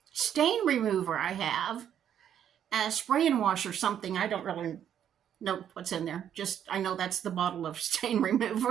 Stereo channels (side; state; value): left; quieter; 9.6 dB